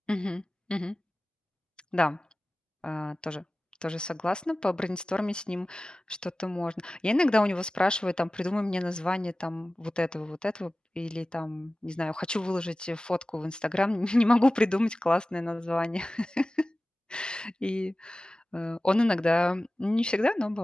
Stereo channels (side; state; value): both; normal; correlation 0.96